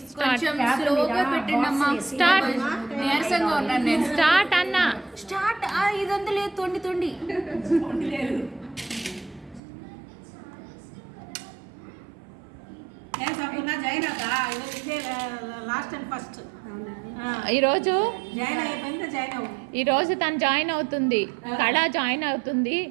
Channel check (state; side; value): drops out; left; at 9.6 s